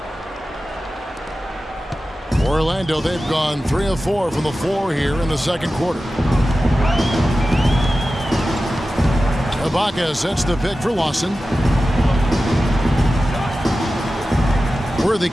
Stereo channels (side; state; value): both; normal; correlation 0.94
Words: Orlando, they've gone 3 of 4 from the floor here in the second quarter. Ibaka sets the pick for Lawson. Worthy